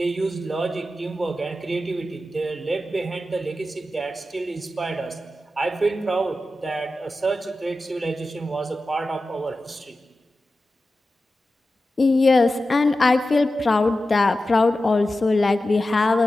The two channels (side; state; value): both; normal; correlation 0.93